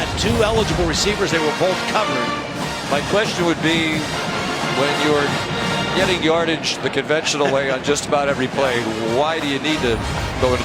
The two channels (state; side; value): identical; both; correlation 1.00